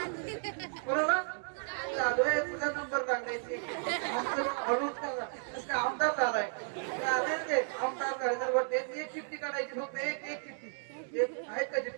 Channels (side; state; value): left; silent; digital silence